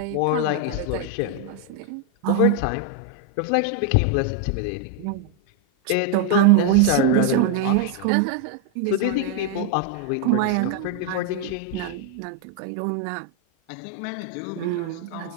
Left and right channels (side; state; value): both; different; correlation 0.01